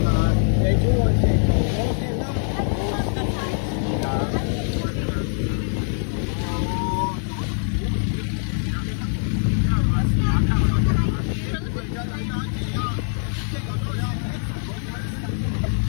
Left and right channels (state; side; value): silent; right; 63 dB below the other